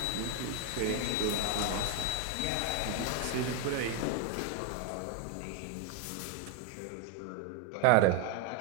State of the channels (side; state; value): both; different; correlation 0.02